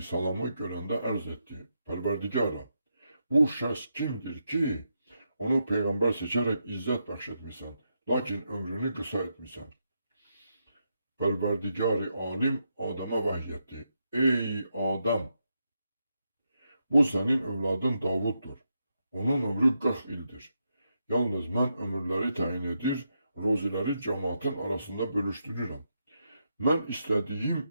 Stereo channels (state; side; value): inverted; both; correlation -0.83